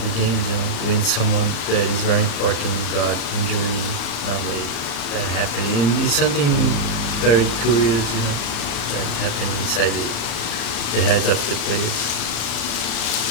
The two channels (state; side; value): late; right; 35 ms